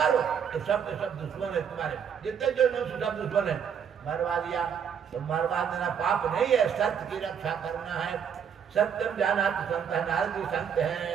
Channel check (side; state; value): left; quieter; 7.7 dB